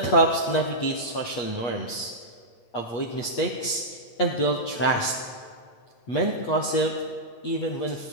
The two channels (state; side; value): late; right; 8.4 ms